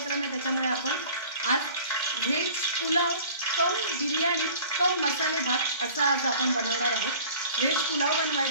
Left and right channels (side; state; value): both; inverted; correlation -0.46